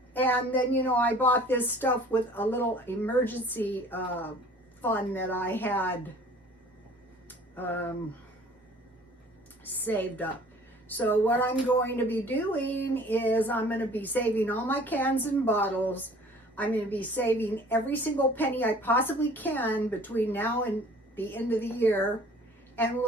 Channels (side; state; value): both; normal; correlation 0.50